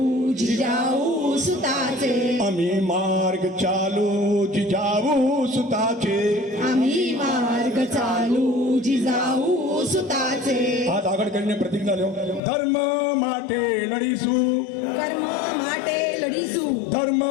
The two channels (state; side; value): drops out; right; at 12.4 s